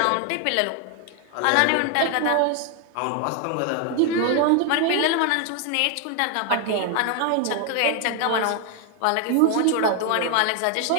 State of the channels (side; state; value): both; different; correlation 0.01